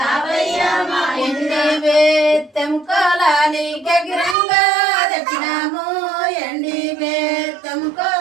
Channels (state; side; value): drops out; left; at 4.4 s